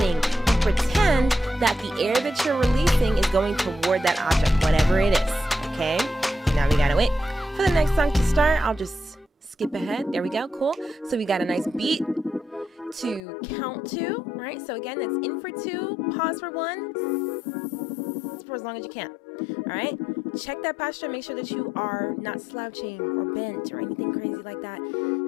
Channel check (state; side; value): drops out; right; at 13.2 s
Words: and pretend that the air that you're releasing is going toward that object, whatever it is. Okay. Now we gotta wait for the next song to start. I'll just skip ahead. There we go. Cool. So we got a nice beat to count to, right? So again, that's in for 2, pause for 1, for as long as you can. All right. Check that posture. Make sure that you are not slouching or bent or anything crazy like that.